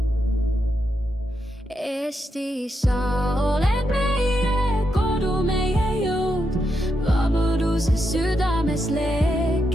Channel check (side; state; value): both; normal; correlation 0.83